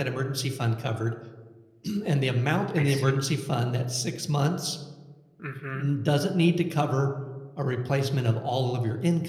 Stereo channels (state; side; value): identical; both; correlation 1.00